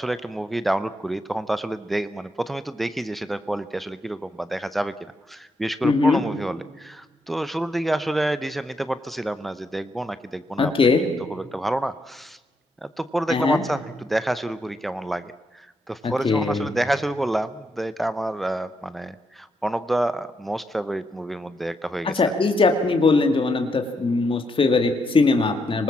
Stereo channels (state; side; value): normal; both; correlation 0.79